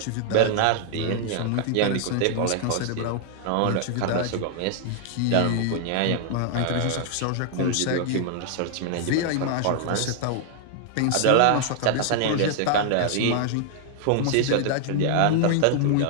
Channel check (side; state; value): both; different; correlation 0.00